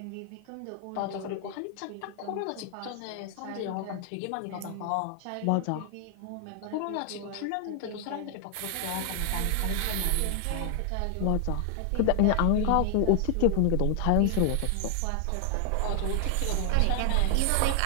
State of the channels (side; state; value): both; different; correlation 0.00